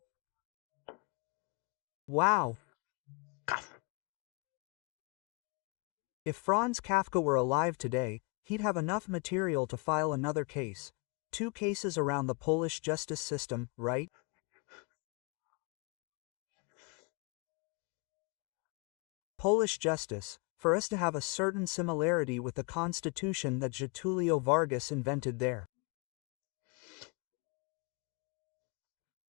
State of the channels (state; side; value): quieter; right; 32.6 dB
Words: Wow! If Franz Kafka were alive today, he'd have enough material to file another case. 2 cases around the Polish justice system, right? Polish justice, for us to have a certain similarity with the constitution that Getulio Vargas invented there.